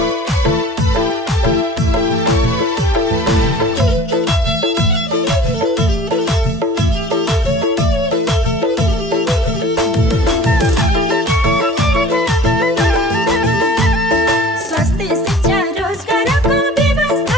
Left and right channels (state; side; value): normal; both; correlation 0.44